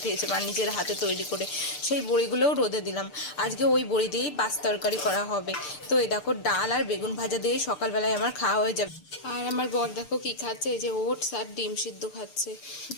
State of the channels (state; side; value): late; right; 6.7 ms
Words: মা নিজের হাতে তৈরি করে, সেই বড়িগুলোও রোদে দিলাম। আজকে ওই বড়ি দিয়েই পাঁচ তরকারি করা হবে। তো এই দেখো ডাল আর বেগুন ভাজা দিয়ে সকালবেলায় আমার খাওয়া হয়ে যাবে। আর আমার বর দেখো কি খাচ্ছে, এই যে ওটস আর ডিম সিদ্ধ খাচ্ছে।